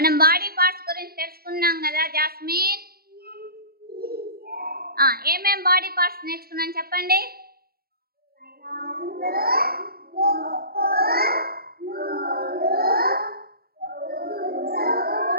బాడీ పార్ట్స్ గురించి తెలుసుకున్నాం కదా జాస్మిన్. ఏమేం బాడీ పార్ట్స్ నేర్చుకున్నాం చెప్పండి.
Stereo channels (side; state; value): left; late; 0.44 ms